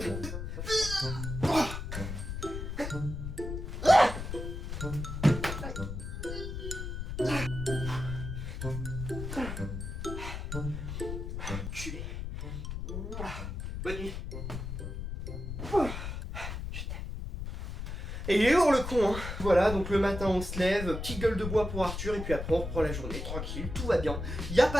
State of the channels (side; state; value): left; noise; rumble, 5 dB below the sound